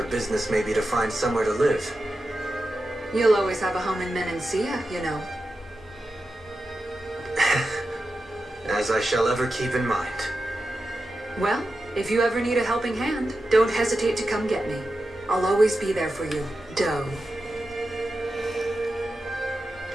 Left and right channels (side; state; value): both; normal; correlation 0.91